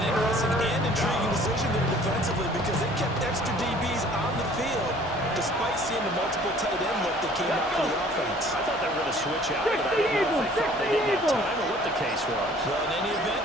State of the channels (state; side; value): normal; both; correlation 0.53